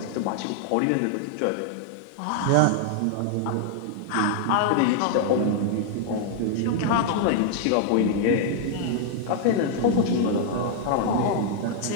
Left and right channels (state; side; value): different; both; correlation 0.00